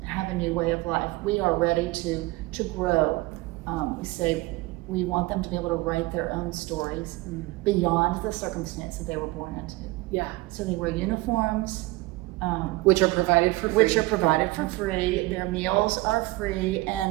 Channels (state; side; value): quieter; left; 20.9 dB